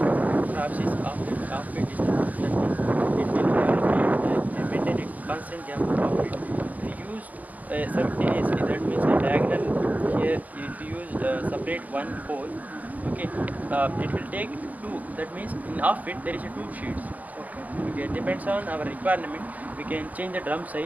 perhaps is offbeat distance. That means it will maintain a constant gap of offbeat. If you use simultaneously, that means a diagonal here. If you use separate one pole, okay, it will take 2. That means in offbeat there is a 2 sheets. Okay, depends on our requirement. we can change the drum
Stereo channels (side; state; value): left; late; 0.077 ms